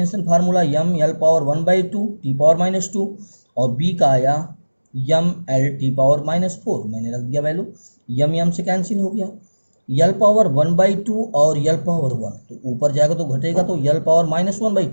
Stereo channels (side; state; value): both; inverted; correlation -1.00